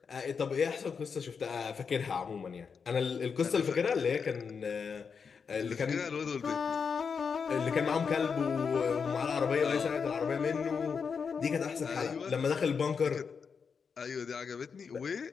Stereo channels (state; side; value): quieter; right; 5.9 dB